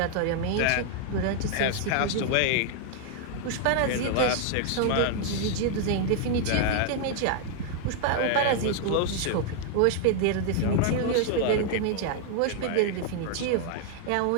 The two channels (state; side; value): different; both; correlation 0.00